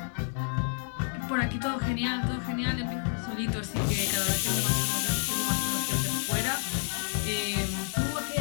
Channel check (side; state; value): right; silent; 58 dB below the other